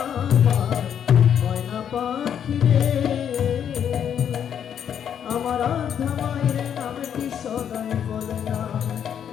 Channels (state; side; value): quieter; right; 8.7 dB